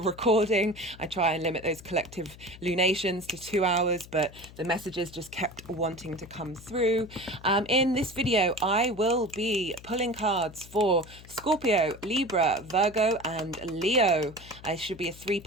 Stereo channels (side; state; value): left; noise; hum, 19 dB below the sound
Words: I try and limit those collective lunations to 2 hours, but the messages just kept wanting to come through. In this video, I will be pulling cards for Scorpio, Libra, Virgo, and Leo. It should be a